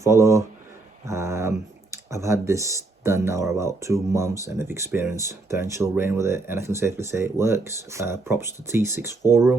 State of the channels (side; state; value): left; quieter; 3.3 dB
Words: I've had this done now about 2 months and I've experienced torrential rain with it, and I can safely say it works. Props to T6